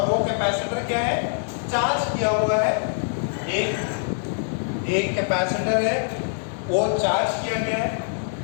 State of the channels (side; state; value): right; silent; digital silence